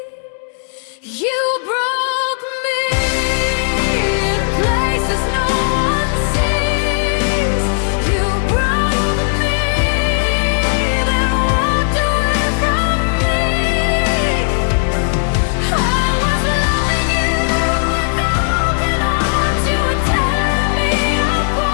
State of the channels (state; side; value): silent; right; digital silence